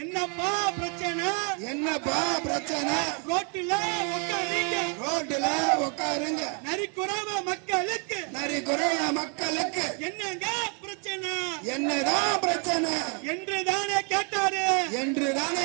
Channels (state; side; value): quieter; left; 37.4 dB